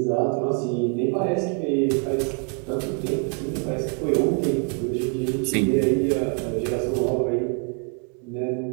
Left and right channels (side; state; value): left; quieter; 38.1 dB